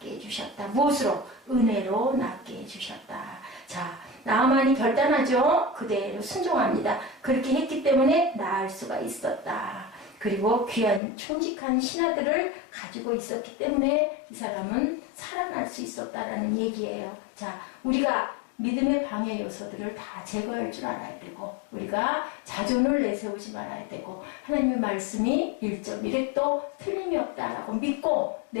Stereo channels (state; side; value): drops out; right; at 11.0 s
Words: 해주셨다. 무엇으로? 은혜로 낫게 해주셨다. 자, 나만이 결단하죠. 그대로 순종합니다. 그렇게 했기 때문에 나을 수가 있었다. 그리고 귀한 충직한 신하들을 가지고 있었기 때문에 이 사람은 살아날 수 있었다라는 얘기예요. 자, 우리가 믿음의 방해 요소들을 다 제거할 줄 알아야 되고 우리가 자존을 내세우지 말아야 되고 하나님의 말씀이 1.1획도 틀림이 없다라고 믿고